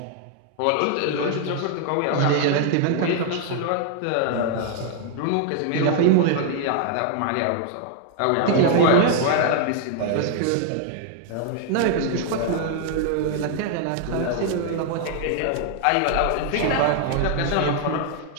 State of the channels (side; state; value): both; different; correlation 0.00